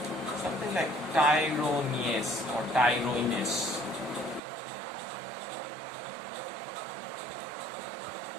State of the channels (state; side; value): drops out; left; at 4.4 s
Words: Something like tyrosinase or tyrosinase.